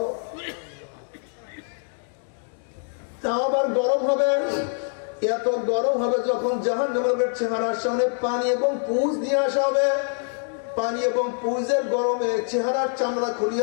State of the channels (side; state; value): right; silent; 55 dB below the other